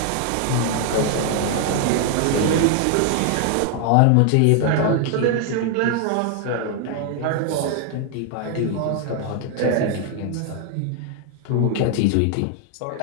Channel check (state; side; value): different; both; correlation 0.00